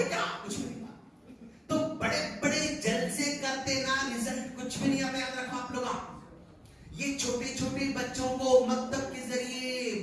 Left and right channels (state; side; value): identical; both; correlation 1.00